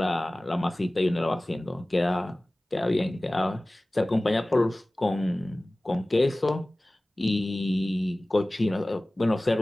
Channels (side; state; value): both; normal; correlation 0.98